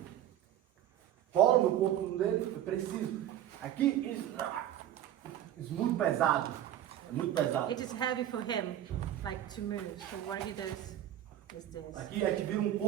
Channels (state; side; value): quieter; left; 11.6 dB